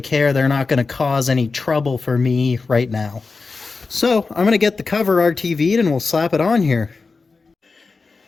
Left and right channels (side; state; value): right; quieter; 4.2 dB